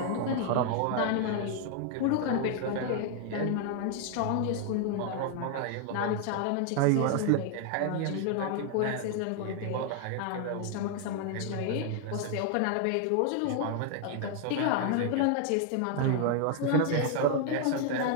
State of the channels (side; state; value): both; different; correlation 0.00